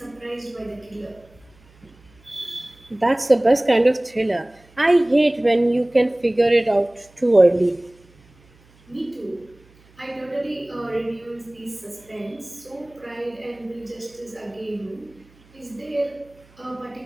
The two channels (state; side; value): noise; right; hum, 29 dB below the sound